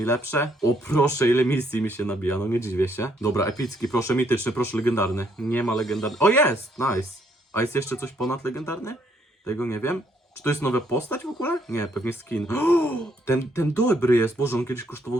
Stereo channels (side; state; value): both; normal; correlation 0.69